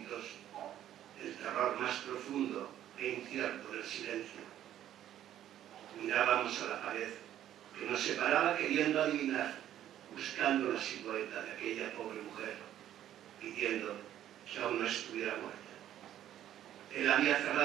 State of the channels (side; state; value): left; quieter; 11.7 dB